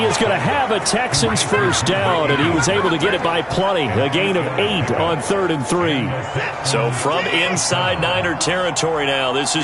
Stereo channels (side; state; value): both; identical; correlation 1.00